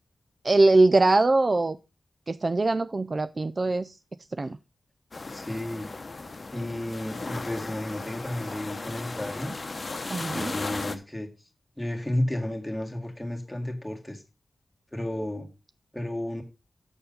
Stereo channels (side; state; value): both; normal; correlation 0.98